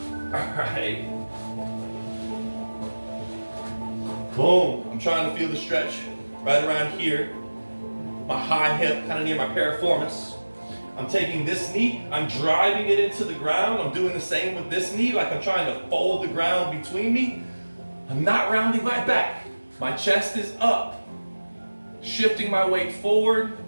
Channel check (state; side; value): inverted; both; correlation -1.00